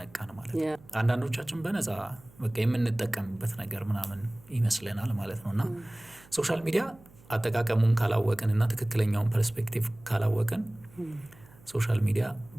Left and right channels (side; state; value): right; noise; hum, 25 dB below the sound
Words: ማለት ነው። አንዳንዶቻችን በነፃ በቃ የምንጠቀምበት ነገር ምናምን ይመስለናል ማለት ነውና ሶሻል ሚዲያ አጠቃቀሙን ካላወቅን እና ትክክለኛውን ፐርስፔክቲቭ ካላወቅን ሶሻል ሚዲያ